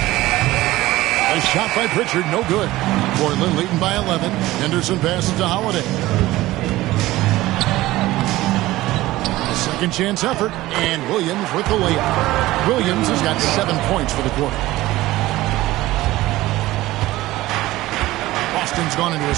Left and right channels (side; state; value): left; quieter; 17.3 dB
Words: A shot by Pritchard, no good. Portland leading by 11. Henderson passes to Holiday. A second chance effort, and Williams with the layup. Williams has got 7 points for the quarter. Boston's gone into a